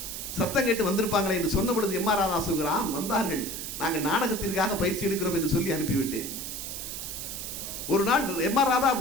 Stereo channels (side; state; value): right; noise; hiss, 6 dB below the sound